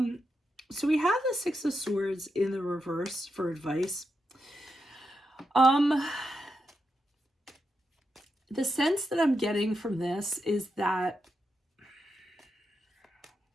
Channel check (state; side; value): normal; both; correlation 0.86